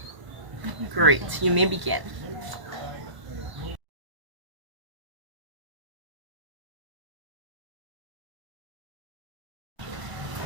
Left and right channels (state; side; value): late; left; 1.0 ms